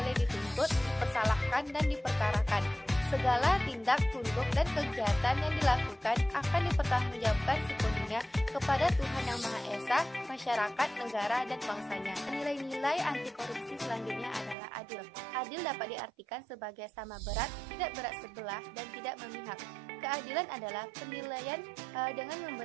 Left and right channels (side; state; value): left; drops out; at 14.6 s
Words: dituntut, dipersalahkan, dan diperkarakan. Segala tindak tunduk dan kegiatan yang dilakukan akan dipertanggungjawabkan sepenuhnya kepada Tuhan Yang Maha Esa, masyarakat, negara, dan bangsanya. Nilai-nilai anti korupsi selanjutnya adalah adil. Adil dapat diartikan sebagai sama berat, tidak berat sebelah, dan tidak memihak. Keadilan adalah penilaian dengan